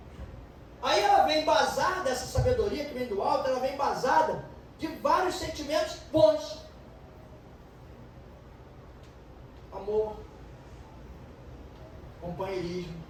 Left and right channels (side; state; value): both; identical; correlation 1.00